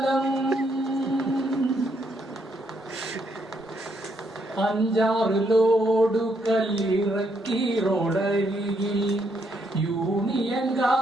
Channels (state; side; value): normal; both; correlation 0.75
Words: 5-6 ലോഡു കല്ലിറക്കി റോഡരികിൽ